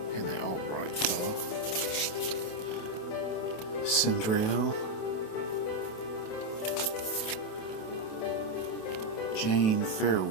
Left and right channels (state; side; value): late; right; 28 ms